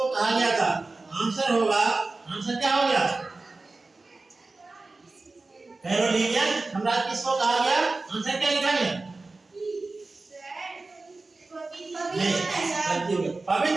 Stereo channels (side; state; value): left; quieter; 3.4 dB